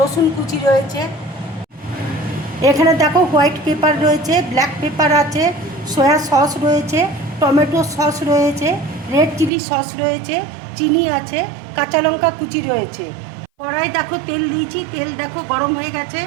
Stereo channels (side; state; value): left; drops out; at 9.5 s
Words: কুচি রয়েছে। এখানে দেখো হোয়াইট পেপার রয়েছে, ব্ল্যাক পেপার আছে, সয়া সস রয়েছে, টমেটো সস রয়েছে, রেড চিলি সস রয়েছে, চিনি আছে, কাঁচা লঙ্কা কুচি রয়েছে। কড়াই দেখো তেল দিয়েছি, তেল দেখো গরম হয়ে গেছে।